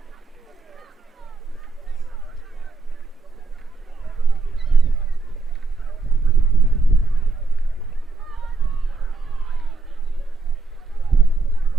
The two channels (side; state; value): left; quieter; 3.8 dB